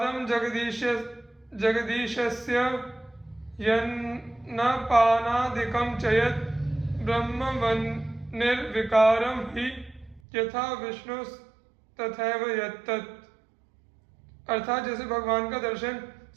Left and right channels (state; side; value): drops out; left; at 10.2 s